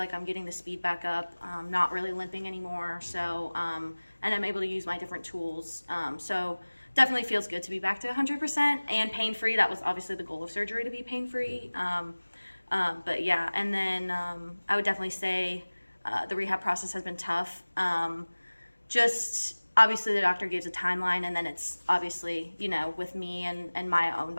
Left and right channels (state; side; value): inverted; both; correlation -1.00